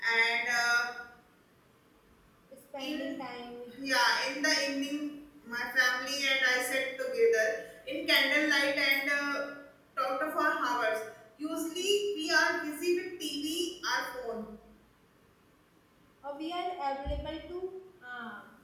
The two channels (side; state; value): both; identical; correlation 1.00